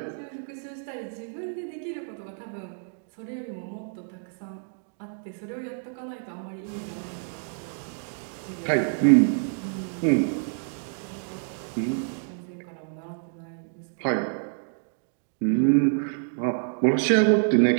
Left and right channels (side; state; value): left; silent; digital silence